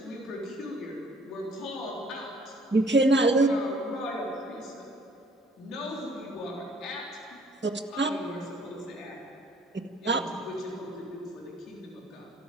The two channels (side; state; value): both; normal; correlation 0.58